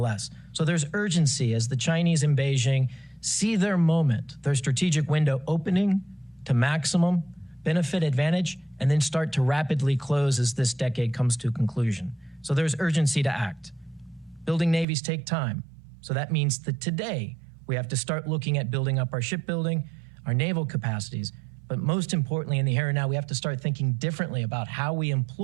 So there's urgency as the Chinese in Beijing see their moment, their strategic window opening to maximum benefit advantage, and then start to rapidly close as this decade comes to a conclusion. So there's urgency to act. Building navies take time. So that means that today we have to start looking at building up our shipbuilding, our naval capacities, but most importantly in the here and now, we have to start thinking differently about how we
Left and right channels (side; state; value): left; drops out; at 14.9 s